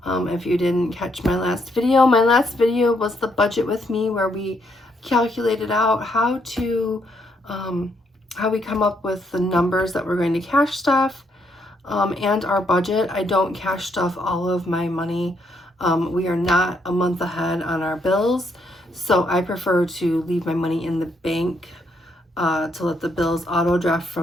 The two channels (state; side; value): normal; both; correlation 0.74